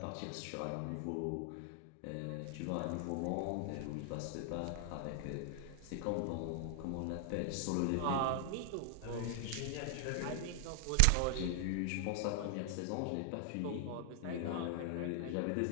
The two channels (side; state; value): both; different; correlation 0.00